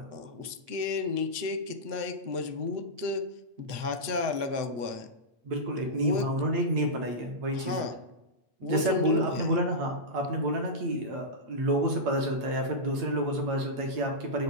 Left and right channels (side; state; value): left; late; 8.7 ms